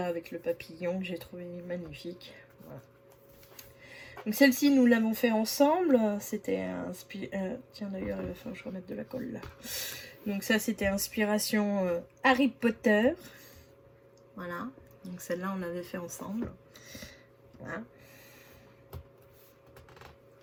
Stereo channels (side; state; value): both; identical; correlation 1.00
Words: avec le papillon que j'ai trouvé magnifique. Voilà. Donc celle-ci nous l'avons fait ensemble. C'était tiens d'ailleurs il va falloir que je remette de la colle là. Donc ça c'était inspiration Harry Potter. Voilà. Donc celle-là on l'avait fait ensemble. Voilà.